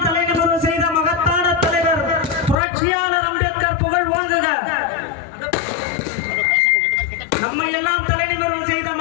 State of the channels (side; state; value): right; drops out; at 2.6 s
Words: தலைநிமிர்வு செய்த மகத்தான தலைவர் புரட்சியாளர் அம்பேத்கர் புகழ் ஓங்குக. நம்ம எல்லாம் தலைநிமிர்வு செய்த